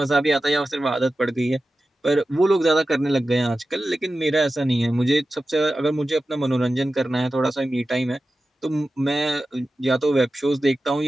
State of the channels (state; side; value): normal; both; correlation 0.94